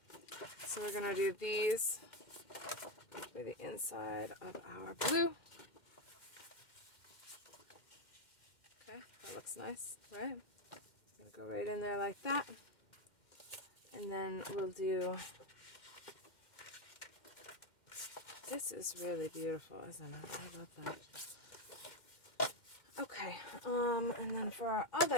So we're going to do these for the inside of our blue. Okay, that looks nice, right? I'm going to go right in there like that. And then we'll do, this is really beautiful, isn't it? I love that. Okay, and then for our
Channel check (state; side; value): late; right; 2.1 ms